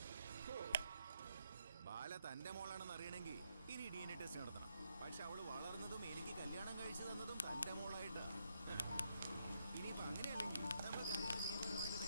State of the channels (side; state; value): both; inverted; correlation -0.78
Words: ബാല തന്റെ മോളാണെന്ന് അറിയണമെങ്കിൽ ഇനി DNA ടെസ്റ്റ് നടത്തണം. പക്ഷെ അവള് വളർന്നതും എനിക്ക് കല്യാണം കഴിച്ചു തന്നതും തന്റെ മോളായിട്ടാ. ഇനിയിപ്പോ അങ്ങനെയല്ലെങ്കിൽ നമ്മൾ കാര്യങ്ങൾ നിയമപരമായിട്ട്